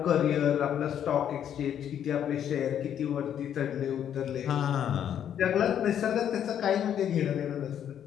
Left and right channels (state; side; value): quieter; right; 9.5 dB